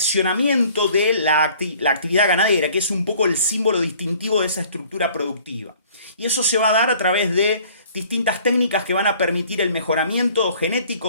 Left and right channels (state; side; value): inverted; both; correlation -0.54